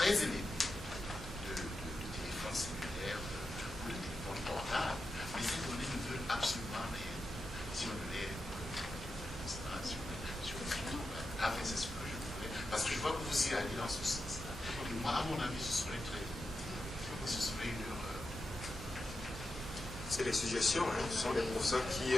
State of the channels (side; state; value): both; normal; correlation 0.89